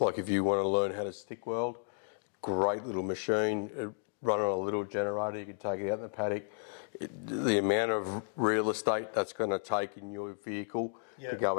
like if you want to learn how to stick weld, great little machine, run on a little generator, you can take it out in the paddock. The amount of real estate that's going to take in your vehicle to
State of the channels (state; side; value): silent; right; digital silence